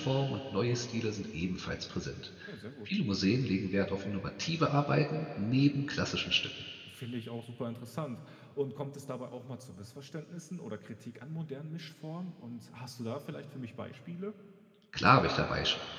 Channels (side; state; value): both; identical; correlation 1.00